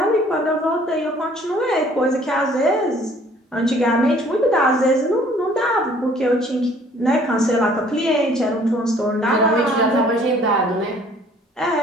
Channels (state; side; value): normal; both; correlation 0.57